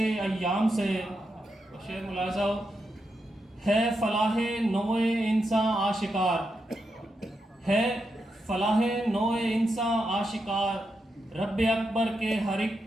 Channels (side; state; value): both; normal; correlation 0.85